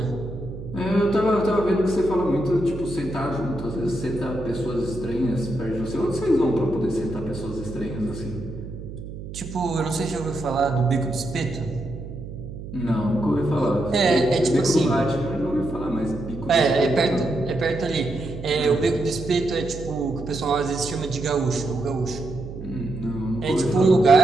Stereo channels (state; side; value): noise; right; hum, 11 dB below the sound